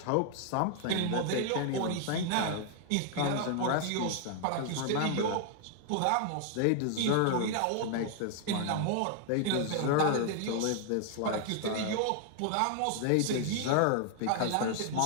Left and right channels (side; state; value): both; different; correlation 0.00